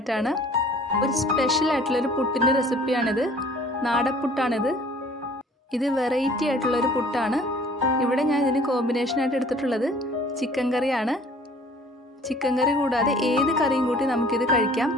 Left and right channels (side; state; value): both; normal; correlation 0.52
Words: ഒരു സ്പെഷ്യൽ ആയിട്ടുള്ളൊരു പുട്ടിൻ്റെ റെസിപ്പിയാണിത്. നാടപ്പുട്ടാണിത്. ഇത് വെറൈറ്റി ആയിട്ടുള്ളൊരു പുട്ടാണ്. ഇവിടെ ഞാൻ ഇതിന് കോമ്പിനേഷനായിട്ട് എടുത്തിട്ടുള്ളത് ചിക്കൻ കറിയാണ്. ചിക്കൻ കറി കൂടാതെ ഏത് കറിയും കൂട്ടി നമുക്കിത് കഴിക്കാം.